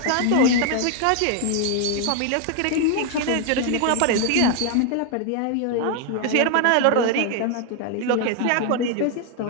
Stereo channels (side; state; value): both; different; correlation 0.00